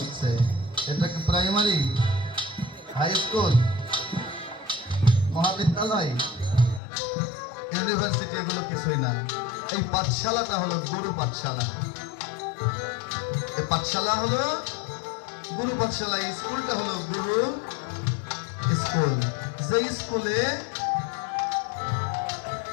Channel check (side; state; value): right; drops out; at 6.8 s